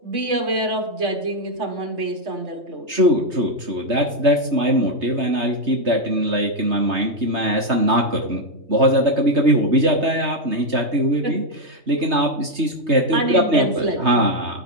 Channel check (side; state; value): left; late; 3.3 ms